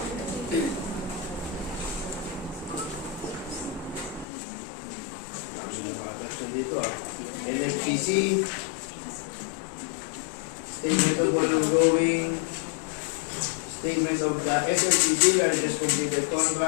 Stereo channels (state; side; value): drops out; right; at 4.2 s